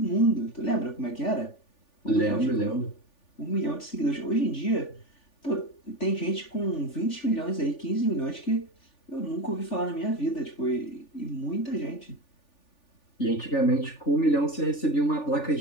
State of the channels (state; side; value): late; right; 3.4 ms